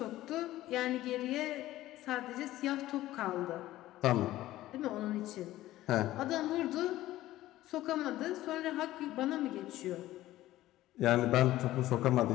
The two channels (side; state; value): right; quieter; 15.4 dB